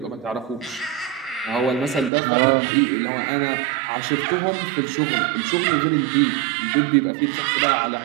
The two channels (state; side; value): drops out; left; at 2.1 s